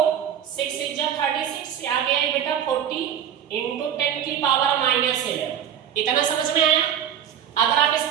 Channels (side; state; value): left; quieter; 9.3 dB